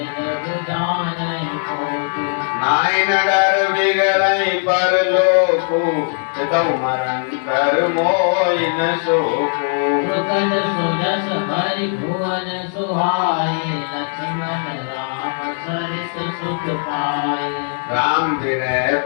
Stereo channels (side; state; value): right; silent; 67 dB below the other